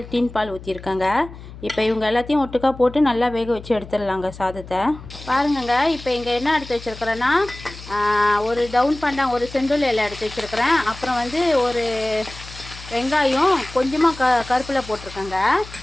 டின் பால் ஊற்றிருக்கேங்க. இப்போ இவங்க எல்லாத்தையும் ஒட்டுக்கா போட்டு நல்லா வேக வச்சு எடுத்துடலாங்க சாதத்தை. பாருங்கங்க, இப்போ இங்கே என்ன எடுத்து வச்சுருக்கிறேன்னா, ஒரு டவுன் பாண்டாங்க, ஒரு செந்தூள் இலை எடுத்து வச்சுருக்கிறேன். அப்புறம் வந்து ஒரு வெங்காயம், கொஞ்சமாக கருப்பில் போட்டிருக்கேங்க.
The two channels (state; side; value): noise; left; hum, 16 dB below the sound